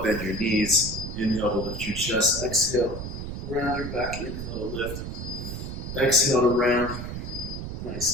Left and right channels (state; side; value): noise; right; rumble, 6 dB below the sound